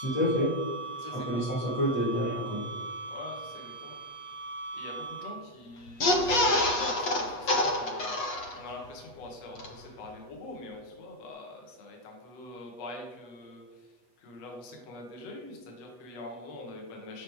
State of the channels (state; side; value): late; right; 8.2 ms